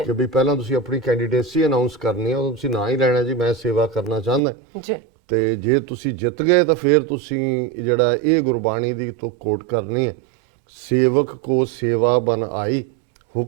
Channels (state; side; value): drops out; left; at 4.4 s